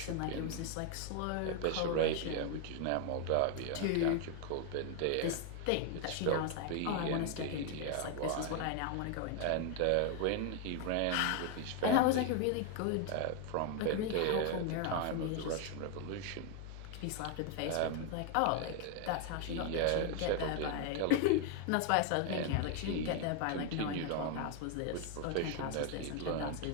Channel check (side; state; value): both; different; correlation 0.01